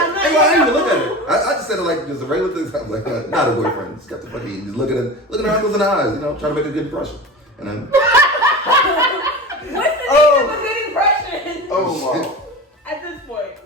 didn't even look at it. I just said it like just a regular thing. I was like, not a boyfriend. Just got the fucking, just looking at her uncles in the eyes, you know, trying to make a good impression. And then, What's the name of a good impression? Oh, wow. At this point.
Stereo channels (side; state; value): both; normal; correlation 0.30